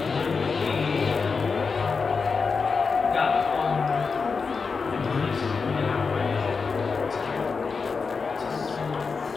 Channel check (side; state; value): right; quieter; 5.0 dB